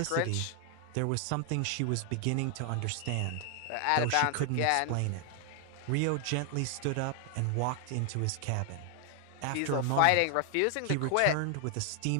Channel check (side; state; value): both; different; correlation 0.00